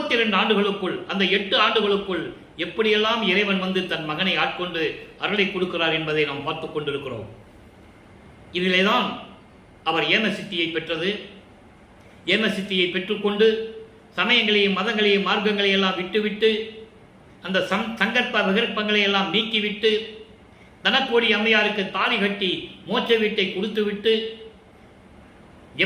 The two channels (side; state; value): both; identical; correlation 1.00